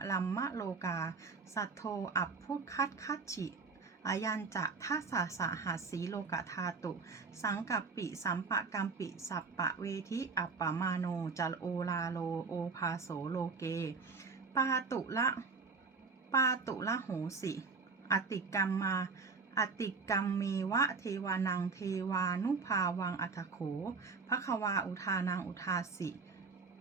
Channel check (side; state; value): left; quieter; 4.5 dB